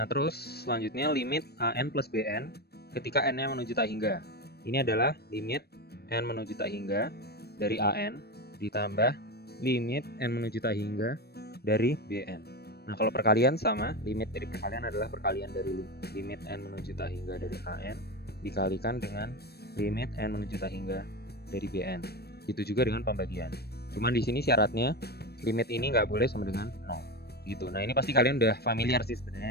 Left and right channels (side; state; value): right; late; 0.47 ms